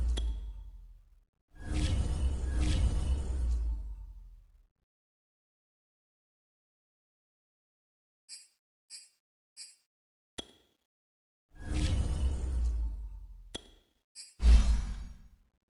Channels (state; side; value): identical; both; correlation 1.00